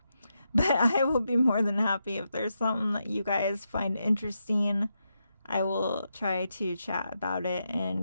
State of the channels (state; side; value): inverted; both; correlation -0.84